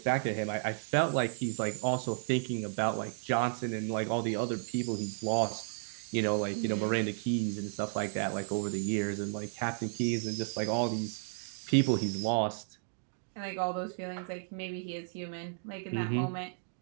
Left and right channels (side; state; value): left; silent; digital silence